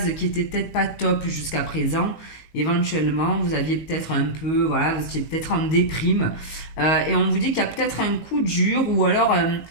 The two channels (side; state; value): right; late; 19 ms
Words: qui était peut-être pas top jusqu'à présent. Éventuellement, vous aviez peut-être vous étiez peut-être en déprime. Et on vous dit qu'il y a peut-être un coup dur ou alors